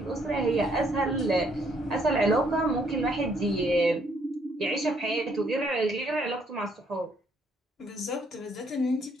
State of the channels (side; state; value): both; normal; correlation 0.68